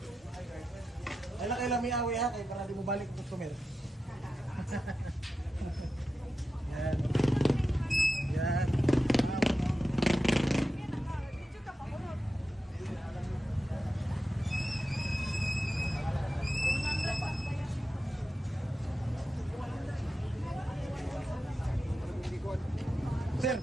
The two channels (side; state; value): both; normal; correlation 0.91